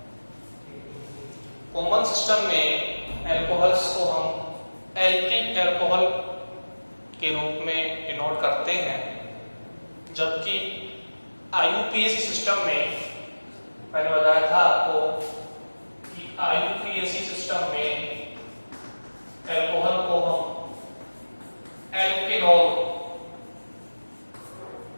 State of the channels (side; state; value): both; inverted; correlation -1.00